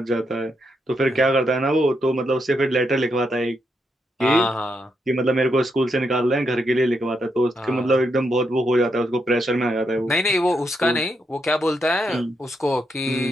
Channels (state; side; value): normal; both; correlation 0.81